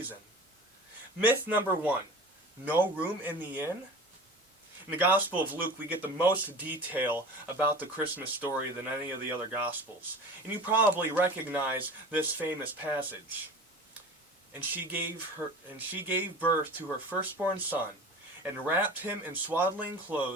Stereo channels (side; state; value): both; normal; correlation 0.37